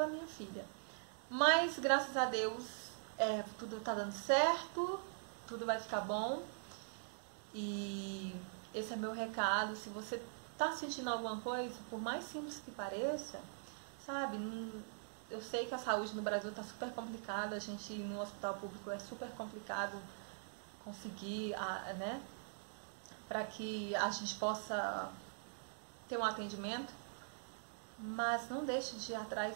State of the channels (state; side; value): silent; left; digital silence